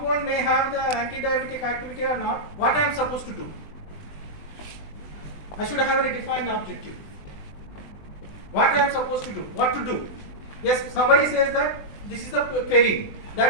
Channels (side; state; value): right; late; 20 ms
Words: may have the anti-diabetic activity or not, what I am supposed to do. I should have a defined objective. What I am supposed to do, what to do. Yes, somebody says that this is the query,